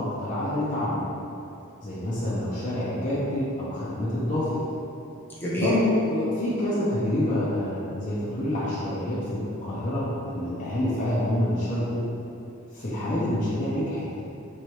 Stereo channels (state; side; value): normal; both; correlation 0.59